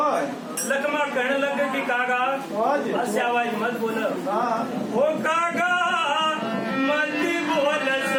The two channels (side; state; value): both; identical; correlation 1.00